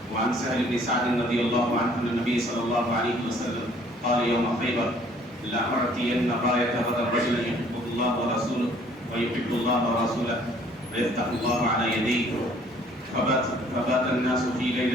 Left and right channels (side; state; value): both; normal; correlation 0.58